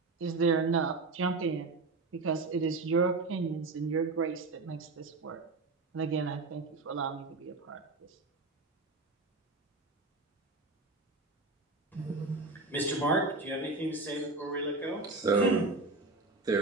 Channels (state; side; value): quieter; left; 3.5 dB